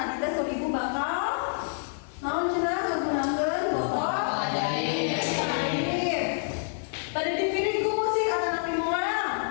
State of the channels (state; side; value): silent; right; 60 dB below the other